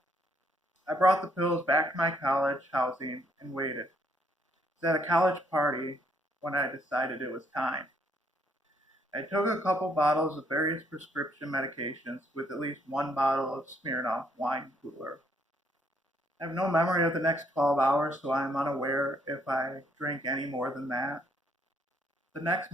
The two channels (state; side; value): normal; both; correlation 0.70